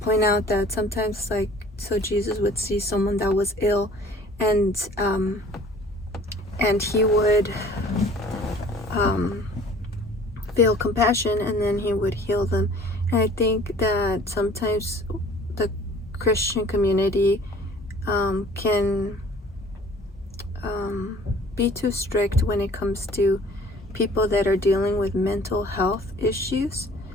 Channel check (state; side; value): normal; both; correlation 0.51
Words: out that sometimes, so Jesus would see someone that was ill, and he would feel compassion, and then he would heal them. And I think that sometimes the Christian community can be too strict when it comes to people that are dealing with mental health issues,